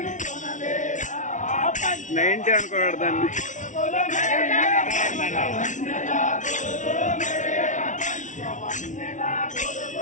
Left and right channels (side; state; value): right; late; 0.37 ms